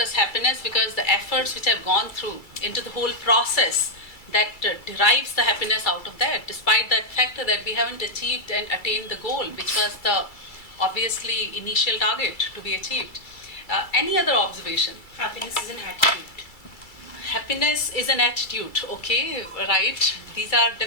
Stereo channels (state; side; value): late; right; 2.3 ms